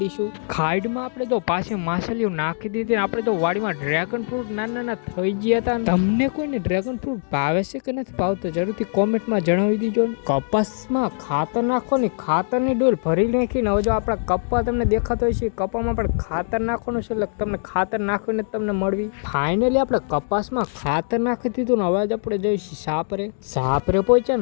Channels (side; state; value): right; silent; 64 dB below the other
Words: દઈશું. ખાઈડમાં આપણે જો પાછી માછલીઓ નાખી દીધી ને આપણે જો વાડીમાં ડ્રેગન ફ્રૂટ નાના થઈ ગયા હતા. તમને કોઈને ડ્રેગન ફ્રૂટ ભાવે છે કે નથી ભાવતો જરૂરથી કોમેન્ટમાં જણાવી દીજો. કપાસમાં ખાતર નાખો ને ખાતરની ડોલ ભરી નાખીને હવે જો આપણા કપ્પા તમને દેખાતો હોય છે કપ્પામાં પણ ખાતર નાખવાનું છે એટલે તમને ખાતર નાખીને તમને મળવી. ફાઇનલી આપણે કપાસમાં ખાતર નાખી દીધું ને હવે આપણે જઈશું સાપરે પહોંચ્યા